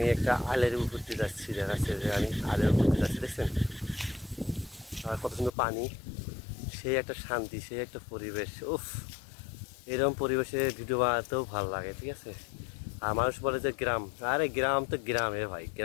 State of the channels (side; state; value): right; drops out; at 5.5 s